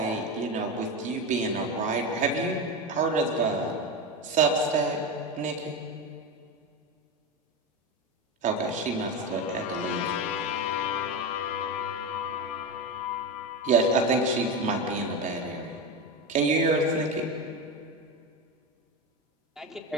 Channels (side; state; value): both; normal; correlation 0.18